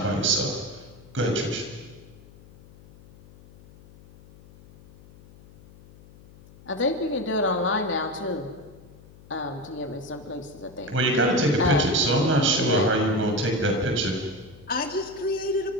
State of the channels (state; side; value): noise; left; hum, 22 dB below the sound